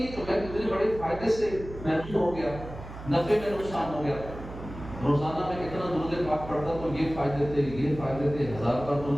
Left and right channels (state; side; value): noise; right; hum, 12 dB below the sound